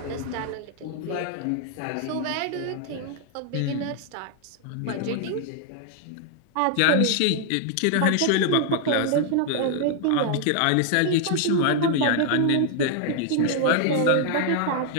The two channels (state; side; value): different; both; correlation 0.00